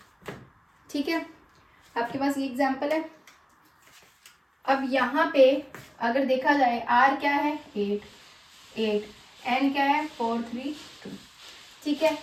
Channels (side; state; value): both; identical; correlation 1.00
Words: ठीक है, आपके पास ये एग्जाम्पल है। अब यहाँ पे अगर देखा जाए आर क्या है 8, एन क्या है 4 3 2, ठीक है।